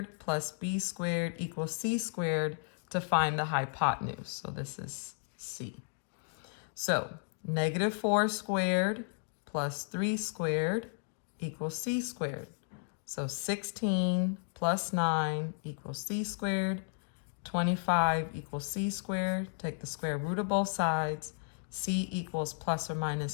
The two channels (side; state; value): right; silent; 55 dB below the other